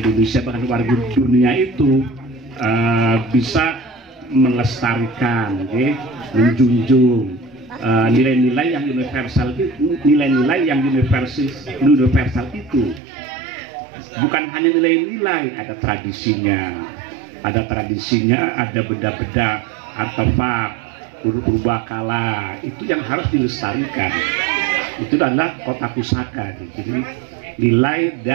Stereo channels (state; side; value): drops out; left; at 13.0 s